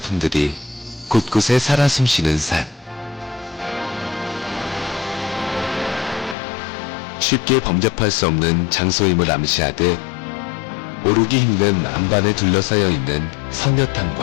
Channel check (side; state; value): right; drops out; at 6.4 s